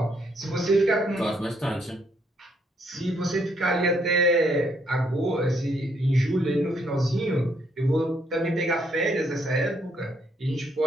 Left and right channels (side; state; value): both; normal; correlation 0.72